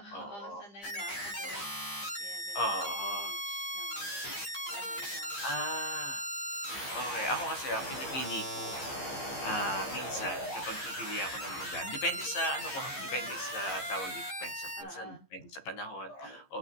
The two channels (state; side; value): late; right; 15 ms